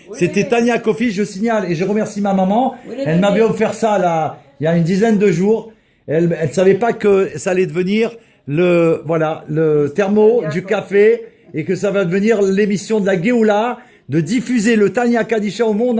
C'était Tanya Kofi, je signale, et je remercie ma maman. Elle m'avait offert ça là, il y a une dizaine de jours. Elle savait pas que ça allait devenir le thermo du café et que ça va devenir l'émission de la Géoula, de diffuser le Tanya Kadisha au monde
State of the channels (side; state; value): both; identical; correlation 1.00